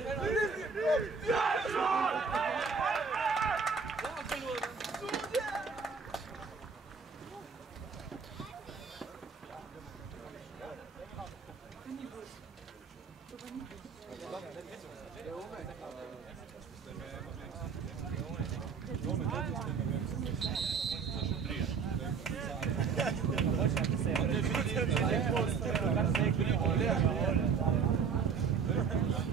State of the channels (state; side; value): quieter; left; 5.6 dB